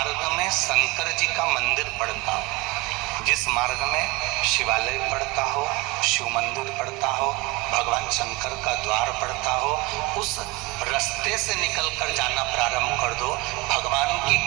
में शंकर जी का मंदिर पड़ता हो, जिस मार्ग में शिवालय पड़ता हो, शिव मंदिर पड़ता हो, भगवान शंकर का द्वार पड़ता हो, उस रास्ते से निकलकर जाना प्रारंभ कर दो। भगवान की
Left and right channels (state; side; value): quieter; left; 23.0 dB